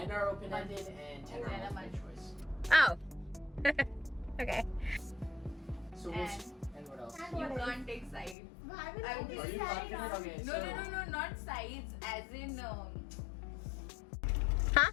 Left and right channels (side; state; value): right; drops out; at 8.3 s